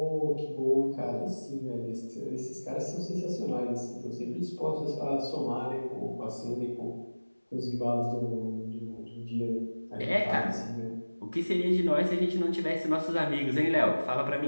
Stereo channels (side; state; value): both; inverted; correlation -1.00